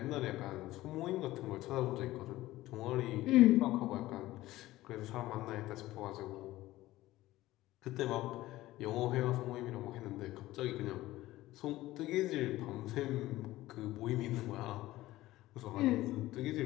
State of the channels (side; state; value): right; quieter; 16.7 dB